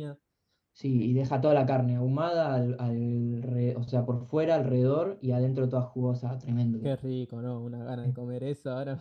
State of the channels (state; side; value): identical; both; correlation 1.00